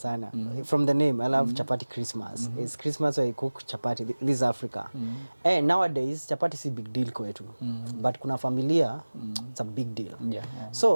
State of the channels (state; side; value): inverted; both; correlation -1.00